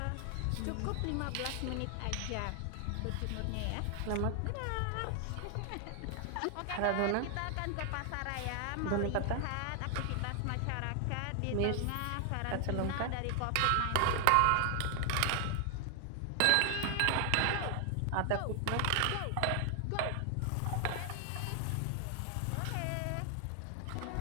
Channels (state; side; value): different; both; correlation 0.00